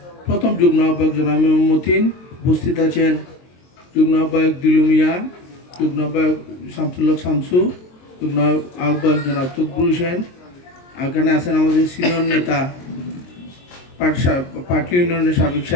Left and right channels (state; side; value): late; right; 22 ms